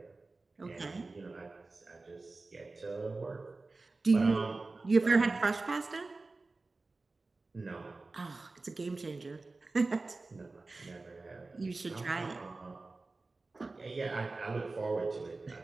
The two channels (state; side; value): quieter; left; 3.5 dB